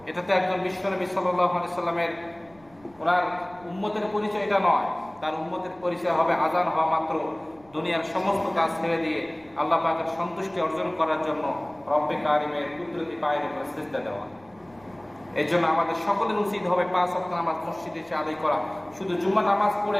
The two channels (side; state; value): right; noise; rumble, 28 dB below the sound